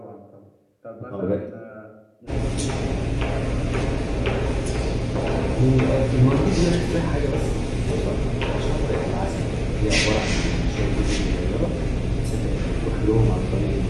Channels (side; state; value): both; identical; correlation 1.00